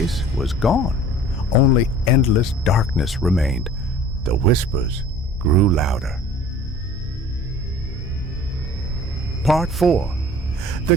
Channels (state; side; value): normal; both; correlation 0.47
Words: was gone. Only endless darkness remained. The whispers grew louder. Part 4. The